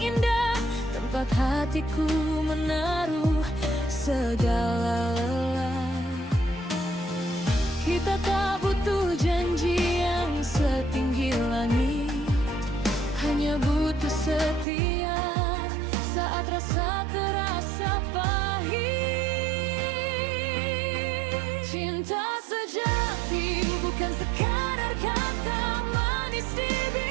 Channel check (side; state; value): left; drops out; at 14.7 s